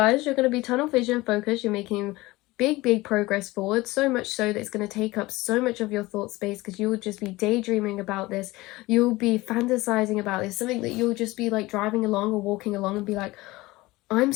you're going to be tunnel vision focused. You're making big progress forward, so much so that it's going to take up so much of your thought space because you'll just be daydreaming about this. You'll be fantasizing about this, something that you'll just be like driving along or walking along and be like, I'm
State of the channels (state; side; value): quieter; right; 20.2 dB